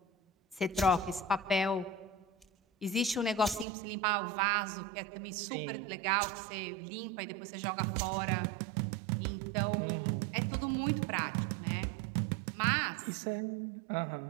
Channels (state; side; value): drops out; left; at 3.7 s